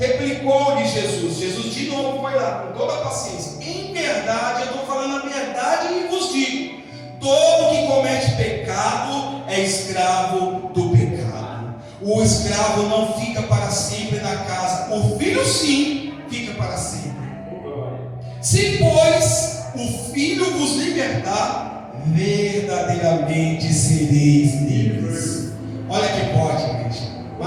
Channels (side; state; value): both; identical; correlation 1.00